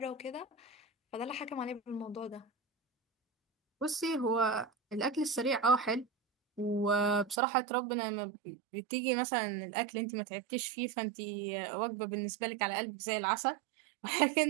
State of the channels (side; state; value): left; drops out; at 7.4 s